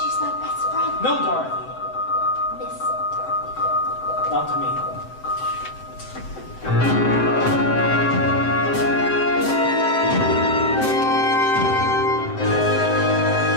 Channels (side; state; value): right; late; 7.8 ms